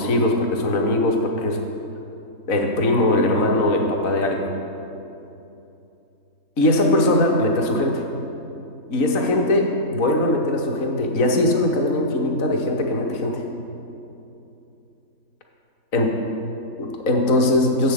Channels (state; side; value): late; right; 3.9 ms